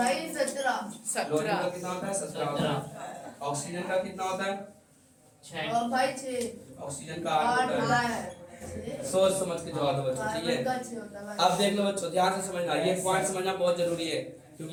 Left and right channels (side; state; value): both; identical; correlation 1.00